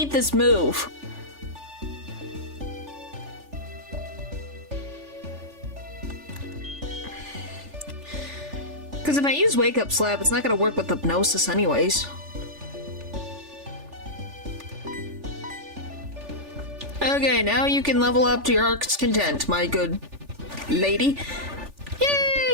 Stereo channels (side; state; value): left; late; 3.4 ms